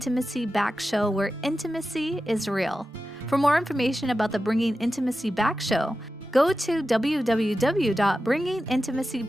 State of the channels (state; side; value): normal; both; correlation 0.92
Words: Back show, where intimacy is real. For more information about the Bringing Intimacy Back show, go to